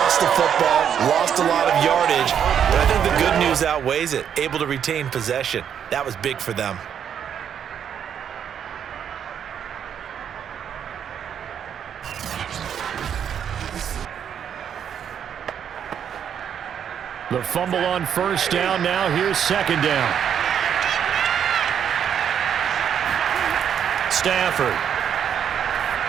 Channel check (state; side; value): quieter; left; 8.5 dB